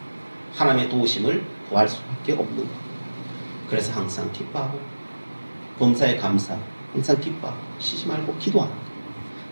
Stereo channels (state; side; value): inverted; both; correlation -1.00